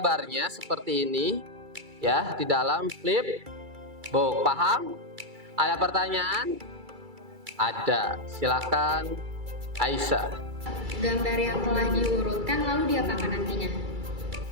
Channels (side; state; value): left; late; 2.3 ms